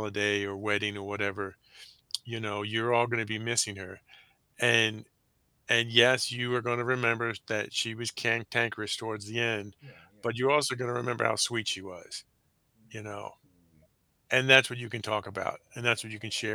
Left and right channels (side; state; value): both; identical; correlation 1.00